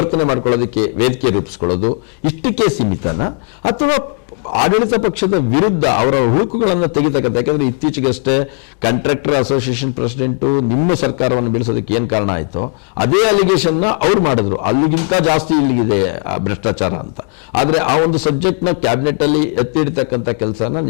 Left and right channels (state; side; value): quieter; right; 38.0 dB